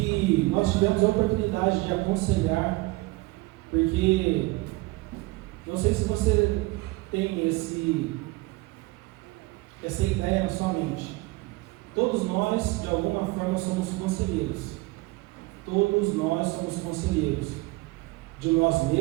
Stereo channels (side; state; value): left; quieter; 21.8 dB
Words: nós tivemos a oportunidade de aconselhar, porque não sei se você tem essa ideia na sua mente. Todos nós, de alguma forma, somos conselheiros. Todos nós somos conselheiros de nós